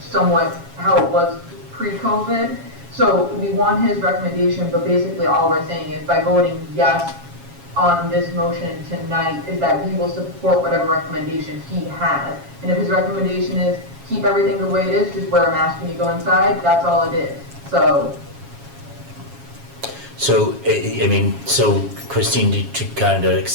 how it was pre-COVID? So we want his recommendation, but basically all we're saying is by voting yes on this motion tonight is that we will support whatever recommendation he has. And if his recommendation is keep everything the way it is, just wear a mask when you go inside, that's all it is. So I mean, so Christine, to kind of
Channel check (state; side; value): late; left; 7.3 ms